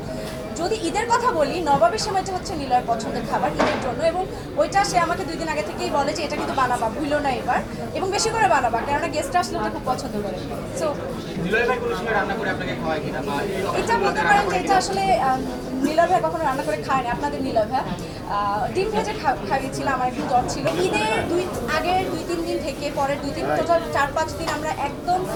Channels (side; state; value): both; identical; correlation 1.00